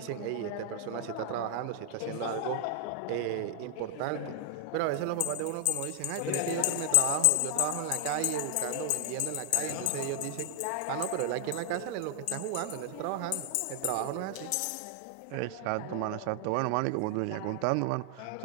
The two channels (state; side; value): different; both; correlation 0.00